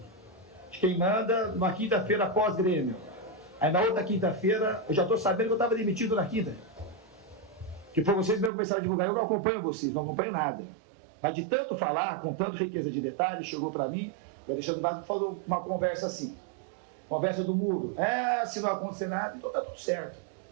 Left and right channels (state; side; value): drops out; left; at 8.5 s